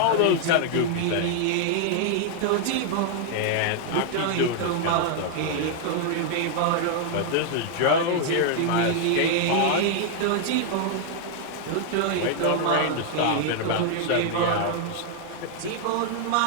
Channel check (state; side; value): different; both; correlation 0.00